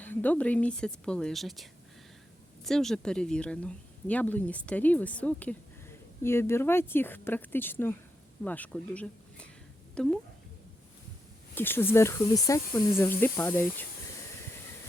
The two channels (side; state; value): both; normal; correlation 0.85